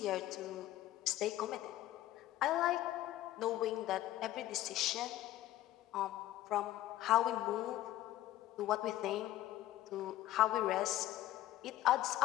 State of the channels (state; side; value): quieter; right; 14.5 dB